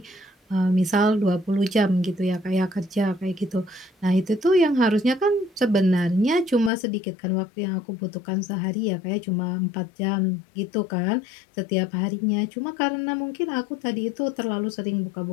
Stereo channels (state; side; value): drops out; right; at 6.7 s